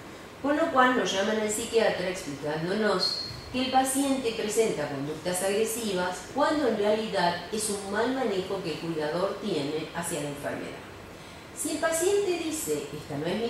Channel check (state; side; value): identical; both; correlation 1.00